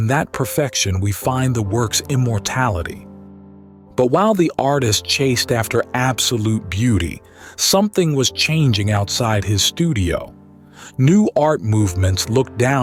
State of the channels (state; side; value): identical; both; correlation 1.00